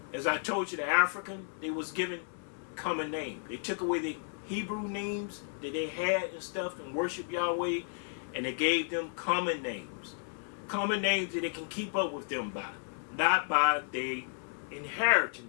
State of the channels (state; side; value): silent; right; digital silence